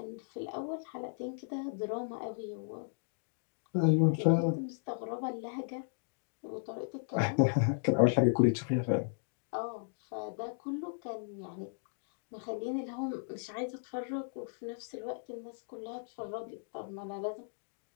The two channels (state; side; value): silent; right; digital silence